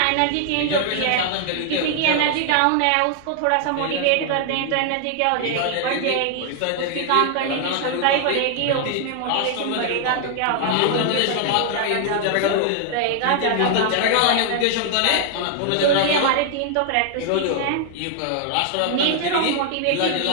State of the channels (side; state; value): both; different; correlation 0.00